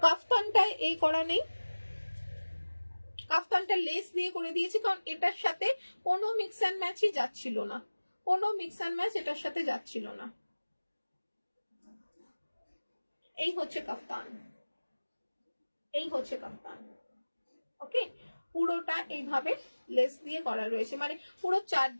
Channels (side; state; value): both; inverted; correlation -1.00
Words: কাফতানটায় এই করা নেই, কাফতানটা লেস দিয়ে করে দিয়েছি কারণ এটার সাথে কোনো মিক্স অ্যান্ড ম্যাচই যাচ্ছিল না, কোনো মিক্স অ্যান্ড ম্যাচ এটার সাথে যাচ্ছিল না। এই হচ্ছে কাফতান, এই হচ্ছে কাফতান, ওকে। পুরোটা এইভাবে লেস দিয়ে করা রয়েছে, মানে পুরো